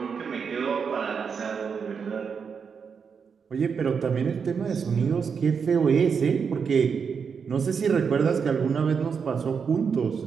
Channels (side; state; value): left; quieter; 6.2 dB